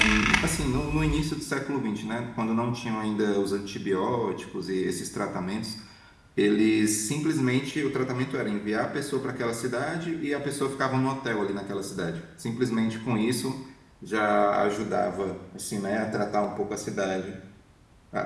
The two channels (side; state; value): both; identical; correlation 1.00